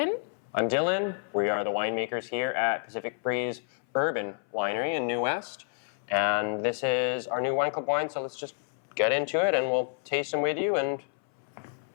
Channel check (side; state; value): right; silent; 57 dB below the other